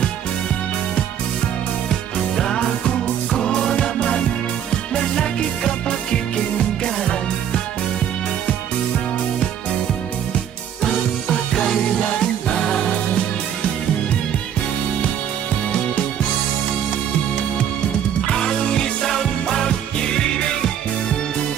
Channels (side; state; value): left; quieter; 9.4 dB